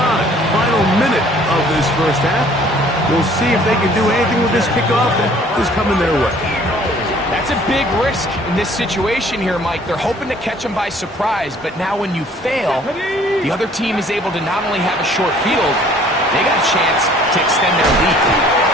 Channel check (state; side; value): normal; both; correlation 0.56